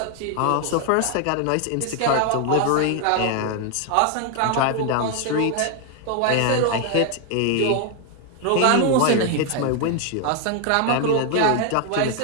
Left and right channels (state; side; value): different; both; correlation 0.01